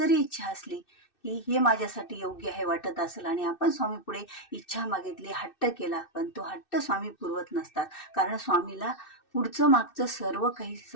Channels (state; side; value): late; right; 2.6 ms